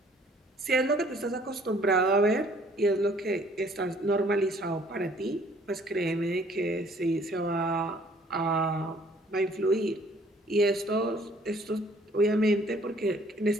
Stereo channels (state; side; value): normal; both; correlation 0.59